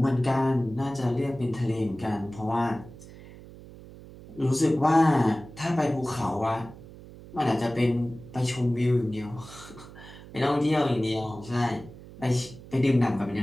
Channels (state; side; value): noise; right; hum, 17 dB below the sound